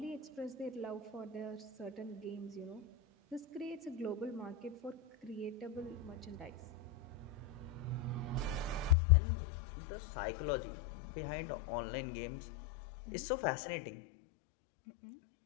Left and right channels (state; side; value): drops out; right; at 9.0 s